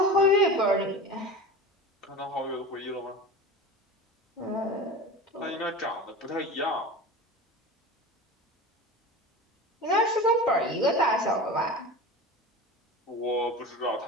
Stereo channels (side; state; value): both; normal; correlation 0.31